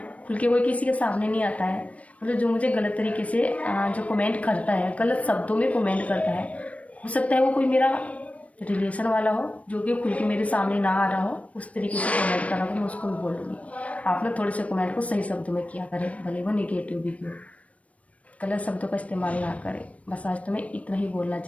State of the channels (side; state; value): right; late; 0.066 ms